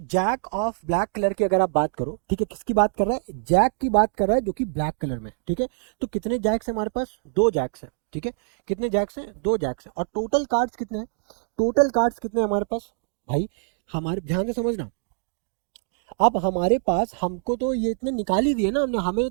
ऑफ ब्लैक कलर की अगर आप बात करो, ठीक है, किसकी बात कर रहा है, जैक की बात कर रहा है जो कि ब्लैक कलर में। ठीक है, तो कितने जैक्स है हमारे पास, 2 जैक्स है। ठीक है, कितने जैक्स हैं, 2 जैक्स है, और टोटल कार्ड्स कितने हैं, टोटल कार्ड्स कितने हैं हमारे पास भाई, हमारे ध्यान से समझना। अब हमारे पास, हमको तो ये इतने निकाल ही दिए ना हमने, हमें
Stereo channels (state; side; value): silent; left; 62 dB below the other